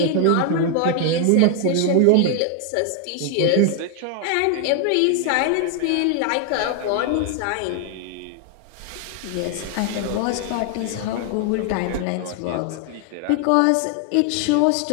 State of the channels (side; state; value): both; different; correlation 0.00